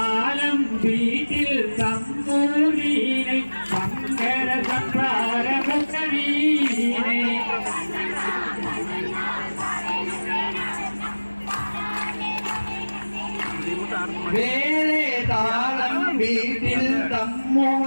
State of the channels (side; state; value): both; inverted; correlation -1.00